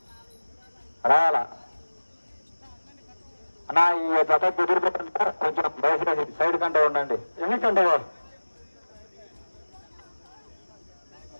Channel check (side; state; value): both; inverted; correlation -1.00